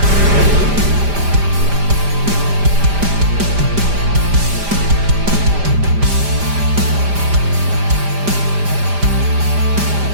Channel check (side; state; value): left; late; 5.0 ms